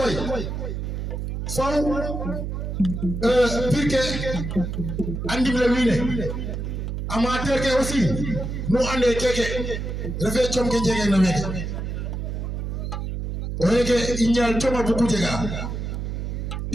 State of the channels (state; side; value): noise; right; hum, 4 dB below the sound